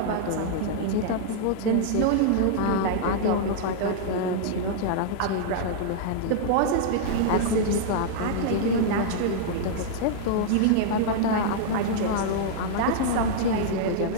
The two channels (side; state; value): both; different; correlation -0.01